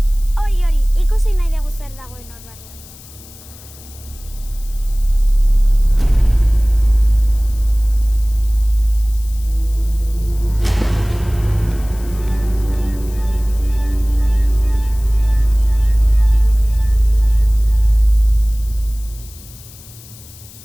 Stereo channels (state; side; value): noise; left; hiss, 21 dB below the sound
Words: Hori, ikusi nahi dugu zer dagoen hor barruan.